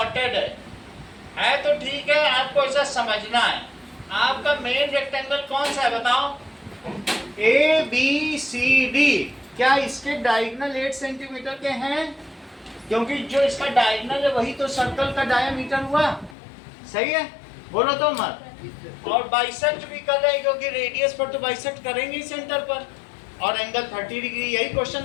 है तो ठीक है, आपको ऐसा समझना है। आपका मेन रेक्टेंगल कौन सा है बताओ? A B C D. क्या इसके डायगोनल 8 सेंटीमीटर के हैं? क्योंकि जो इसका डायगोनल है वही तो सर्कल का डायमीटर हुआ, सही है? बोलो तो मत। और बाइसेक्ट भी कर रहे हैं क्योंकि रेडियस पर तो बाइसेक्ट करेंगे ही सेंटर पर, और एंगल 30 डिग्री यही क्वेश्चन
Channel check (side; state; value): right; drops out; at 16.4 s